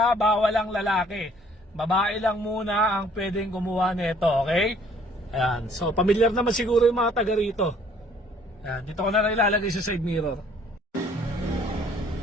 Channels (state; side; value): normal; both; correlation 0.59